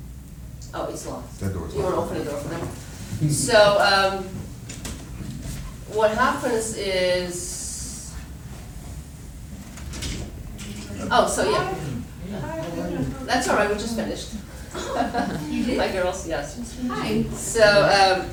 oh, it's locked. That door's You want to locked. open the door for them? So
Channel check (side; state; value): both; identical; correlation 1.00